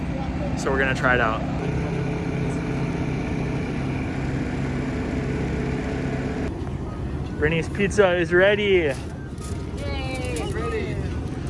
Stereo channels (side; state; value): both; identical; correlation 1.00